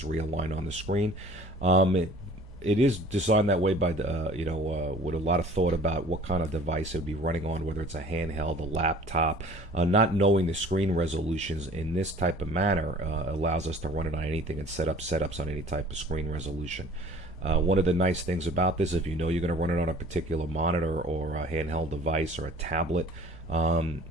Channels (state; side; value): normal; both; correlation 0.49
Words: realign on the screen. It is designed that way by with a lot of thought about what kind of device it would be running on, whether it's a handheld, a laptop. Not knowing the screen resolutions in this type of manner allows us to run it on anything and set up setups on any type of screen resolution. One of the nice things about this, if you know you're going to run it on a particular monitor or a handheld device or a tablet,